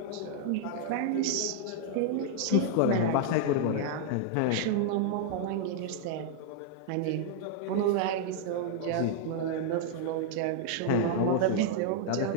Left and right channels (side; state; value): both; different; correlation 0.00